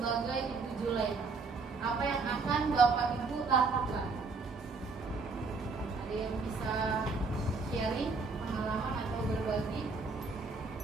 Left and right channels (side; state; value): left; quieter; 4.2 dB